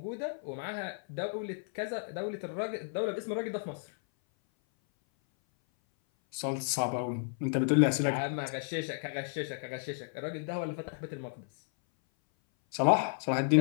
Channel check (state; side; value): silent; right; 56 dB below the other